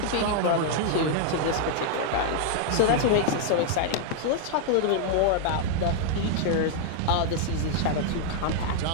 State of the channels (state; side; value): different; both; correlation 0.00